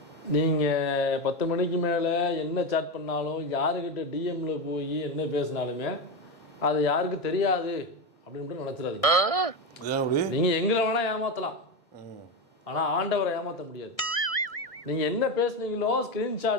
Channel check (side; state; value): right; late; 1.6 ms